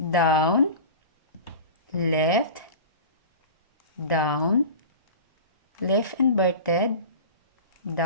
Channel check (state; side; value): inverted; both; correlation -0.33